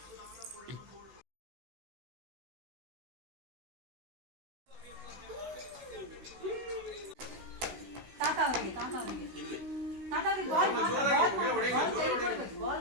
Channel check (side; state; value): left; late; 16 ms